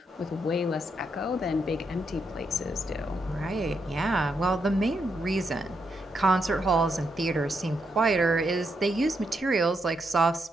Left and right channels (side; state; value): both; normal; correlation 0.80